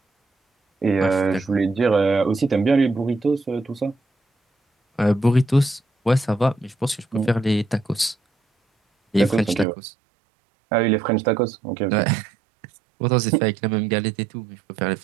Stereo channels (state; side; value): drops out; left; at 9.7 s